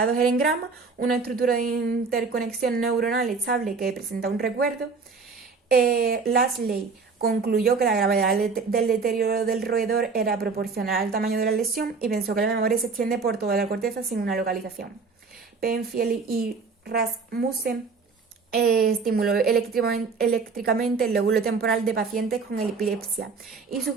es el engrama, una estructura de interconexión neuronal estable que presenta un recuerdo. Lasley concluyó que la gravedad del deterioro del roedor era proporcional al tamaño de la lesión y pensó que la memoria se extiende por toda la corteza sin una localización. Penfield y Rasmussen estimuló eléctricamente el lóbulo temporal de pacientes con epilepsia y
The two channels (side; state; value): left; quieter; 4.7 dB